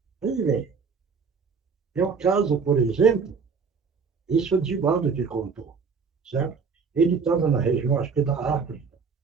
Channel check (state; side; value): quieter; left; 5.4 dB